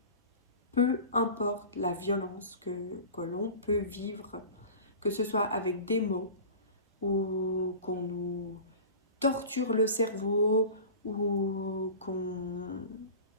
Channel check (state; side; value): inverted; both; correlation -0.37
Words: peu importe la violence que l'on peut vivre, que ce soit avec des mots ou qu'on nous torture le cerveau ou qu'on